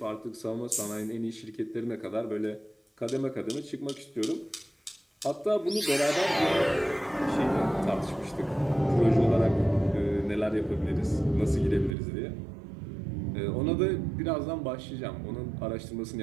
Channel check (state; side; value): drops out; left; at 12.0 s